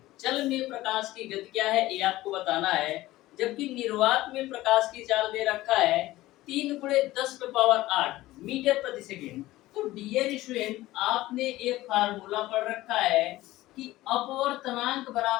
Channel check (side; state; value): right; quieter; 17.0 dB